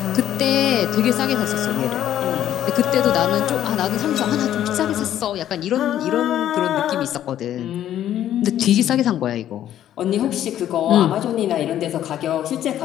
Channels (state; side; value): quieter; right; 11.5 dB